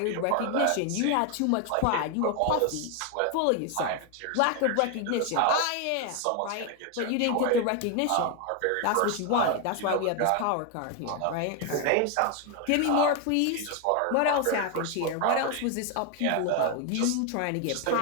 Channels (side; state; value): both; different; correlation 0.01